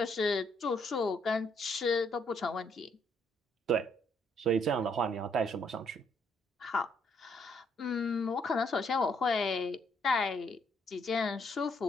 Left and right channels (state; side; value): normal; both; correlation 0.71